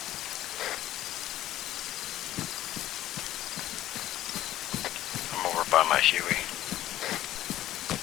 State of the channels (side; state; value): right; quieter; 13.8 dB